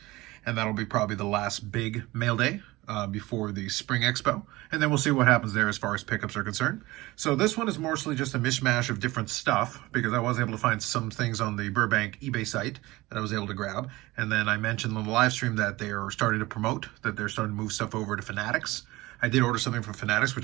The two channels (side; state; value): left; quieter; 19.9 dB